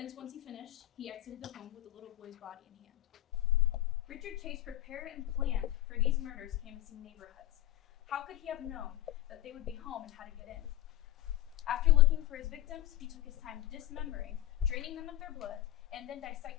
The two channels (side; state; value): right; quieter; 14.8 dB